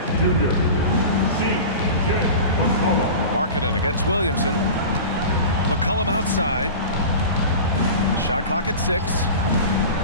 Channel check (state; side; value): inverted; both; correlation -0.33